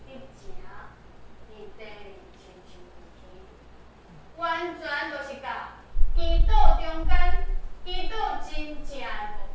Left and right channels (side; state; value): both; identical; correlation 1.00